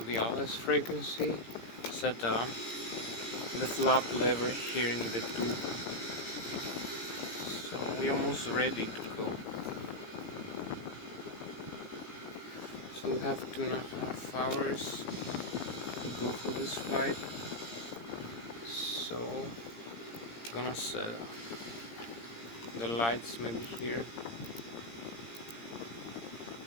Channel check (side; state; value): right; late; 17 ms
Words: the LS frequency, set the flap lever here in the tube. So we're almost ready to go. So we have 2.5 hours to go for this flight. So I'm gonna set the lights maybe here.